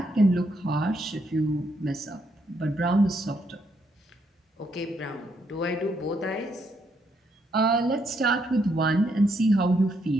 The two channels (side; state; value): both; normal; correlation 0.75